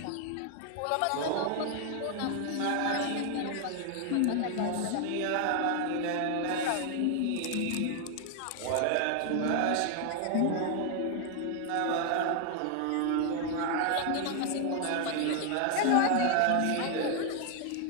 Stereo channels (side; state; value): both; different; correlation 0.00